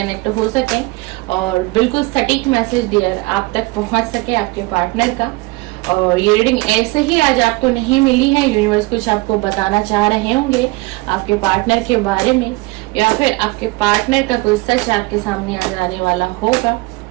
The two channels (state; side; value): quieter; left; 23.4 dB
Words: हो सके और बिल्कुल सटीक मैसेज डियर आप तक पहुंच सके आपके पार्टनर का। और ये रीडिंग ऐसे ही आज आपको नहीं मिली है, यूनिवर्स कुछ आपको बताना चाह रहे होंगे आपके पार्टनर के बारे में, या फिर आपके पार्टनर का कोई सच आपके सामने आ जाने वाला होगा।